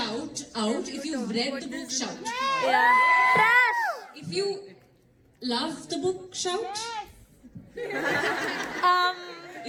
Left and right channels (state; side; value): identical; both; correlation 1.00